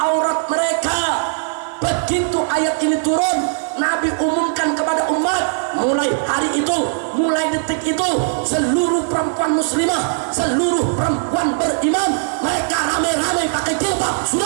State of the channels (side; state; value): left; silent; digital silence